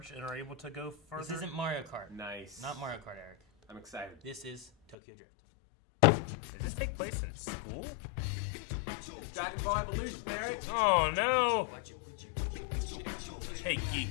and are able to go further? This isn't Mario Kart. Nice. Not Mario Kart, Eric. I'm excited. This is Tokyo Drift. Does this take place in school? Dragon Ball Evolution, Eric. Oh, no. Watch it. Hey,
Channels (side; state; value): right; drops out; at 5.0 s